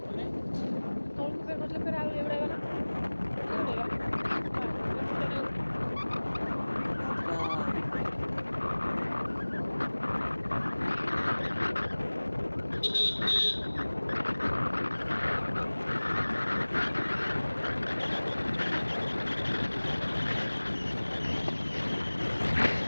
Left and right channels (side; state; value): both; inverted; correlation -1.00